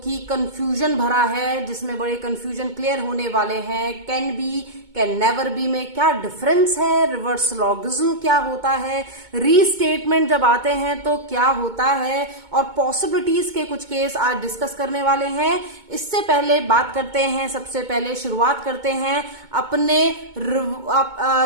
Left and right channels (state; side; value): late; left; 2.2 ms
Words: कंफ्यूजन भरा है, जिसमें बड़े कंफ्यूजन क्लियर होने वाले हैं। Can be, can never B में क्या डिफरेंस है, रिवर्स लॉगिज्म क्या होता है, रीस्टेटमेंट जब आते हैं तो क्या होता है, और पॉसिबिलिटीज के कुछ केस आज डिस्कस करने वाले हैं। इससे पहले बात करते हैं, सबसे पहले शुरुआत करते हैं अपने